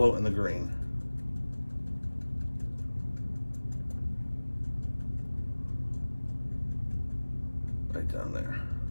and the green. Right down there.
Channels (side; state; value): both; inverted; correlation -1.00